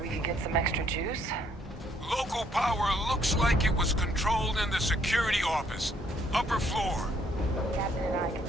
we could get some extra juice? Local power looks like it was controlled in the security office. Upper floor. Captain and I can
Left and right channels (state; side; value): normal; both; correlation 0.67